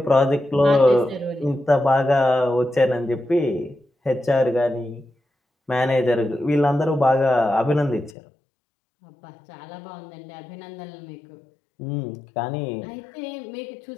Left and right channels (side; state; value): right; drops out; at 8.2 s